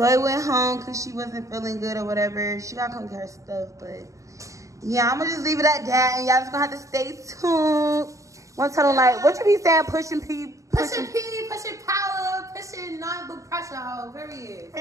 went home because she wasn't feeling good or whatever. She gotta come get her stuff, but yeah, I'm gonna just leave it at that, and y'all just gonna have to stay tuned. Want to tell them like what you be saying? Pushing P, pushing power, pushing nothing but pressure.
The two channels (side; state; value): left; late; 0.16 ms